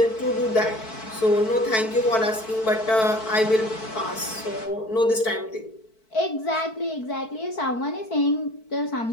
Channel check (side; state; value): right; late; 4.6 ms